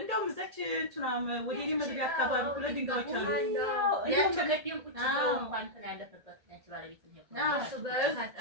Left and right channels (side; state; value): left; late; 1.8 ms